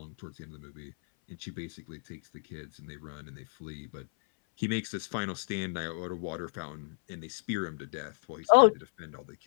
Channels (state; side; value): silent; right; 56 dB below the other